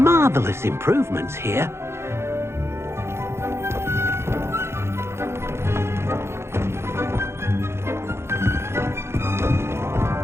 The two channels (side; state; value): left; late; 0.12 ms